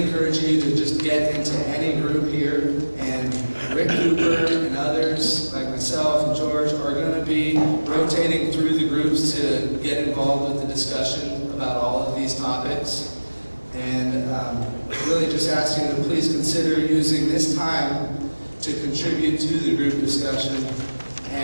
encourage you to just get into any group here, and Rick Cooper and others like myself and George are going to be rotating through the groups to get involved with the discussion about all of these topics. And really just ask you to please consider using this time to contribute to the group discussion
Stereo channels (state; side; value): inverted; both; correlation -1.00